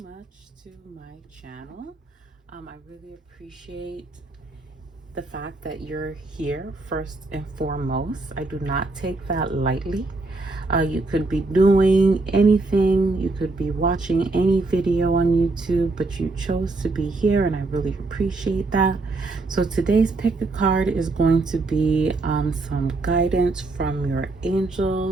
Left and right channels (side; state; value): left; quieter; 3.3 dB